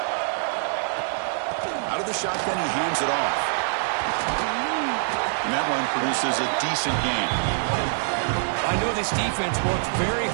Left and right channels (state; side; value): silent; left; 62 dB below the other